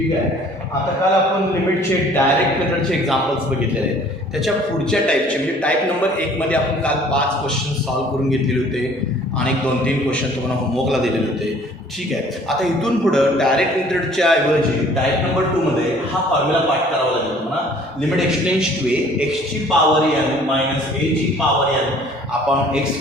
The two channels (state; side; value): normal; both; correlation 0.54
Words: आहे. आता काल आपण लिमिटचे डायरेक्ट मेथडचे एक्झाम्पल्स बघितलेले आहेत. त्याच्या पुढच्या टाईपचे म्हणजे टाईप नंबर 1 मध्ये आपण काल 5 क्वेश्चन सॉल्व्ह करून घेतलेले होते आणि 2-3 क्वेश्चन तुम्हाला होमवर्कला दिलेले होते. ठीक आहे. आता इथून पुढं डायरेक्ट मेथडच्या ऐवजी टाईप नंबर 2 मध्ये हा फॉर्म्युला पाठ करावा लागेल तुम्हाला. लिमिट एक्सटेंड्स टू ए एक्सची पॉवर n मायनस ए ची power n upon x